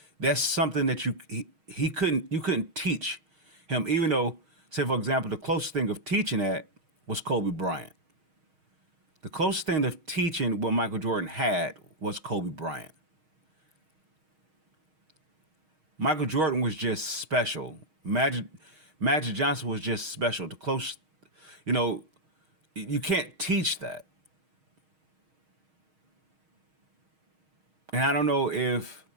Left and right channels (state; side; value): late; left; 6.4 ms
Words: that's something that you couldn't teach him, even though, say for example, the closest thing of teaching that was Kobe Bryant. The closest thing of teaching what Michael Jordan had was Kobe Bryant. Michael Jordan was just special. Magic Johnson was just special. The close, you can't teach that. And I don't know if